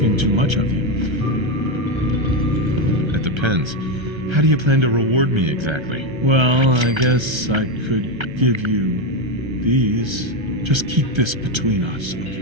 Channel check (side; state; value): left; late; 1.3 ms